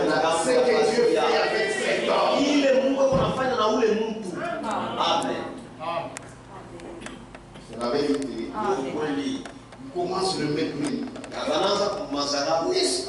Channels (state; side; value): identical; both; correlation 1.00